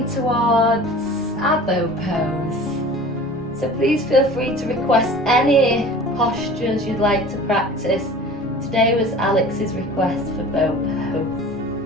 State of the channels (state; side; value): normal; both; correlation 0.41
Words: towards our bow pose. So please feel free to request any postures you'd like to practice. Today was Alex's request for bow pose,